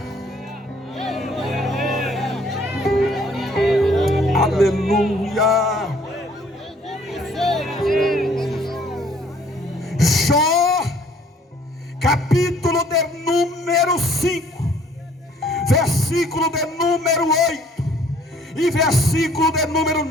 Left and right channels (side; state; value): both; normal; correlation 0.60